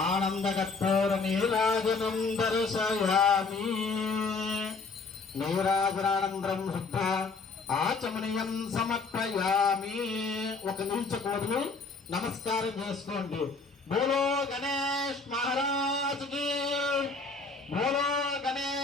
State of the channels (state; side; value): quieter; right; 4.2 dB